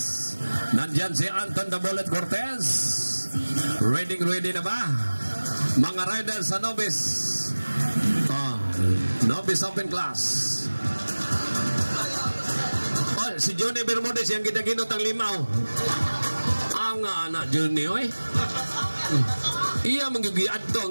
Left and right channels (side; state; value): both; inverted; correlation -1.00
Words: Nandyan si Anton the Bullet Cortez. Ready na ba? Mga riders sa Novice. Novice open class. Si Johnny Bermudez yang ginaginot ang limaw. Ang anak Johnny, oy. Iya magigiad to